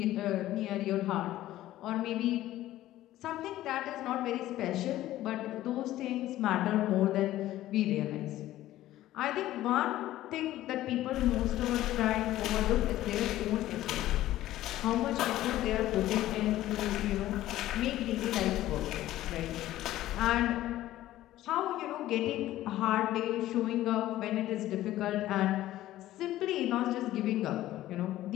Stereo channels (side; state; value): right; quieter; 14.6 dB